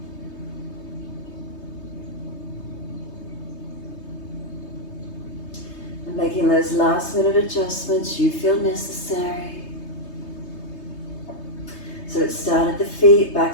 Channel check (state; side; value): late; right; 3.2 ms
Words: And making those last minute adjustments you feel necessary. So let's start at the feet,